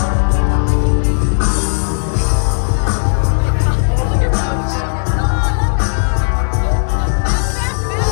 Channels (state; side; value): silent; right; digital silence